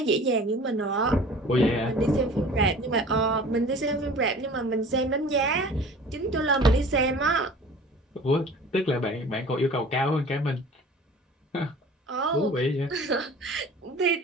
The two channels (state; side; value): normal; both; correlation 0.44